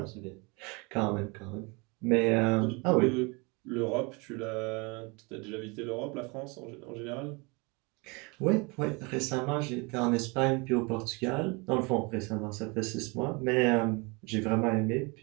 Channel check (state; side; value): quieter; left; 28.9 dB